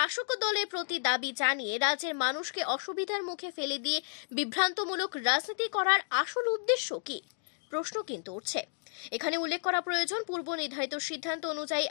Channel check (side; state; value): right; silent; digital silence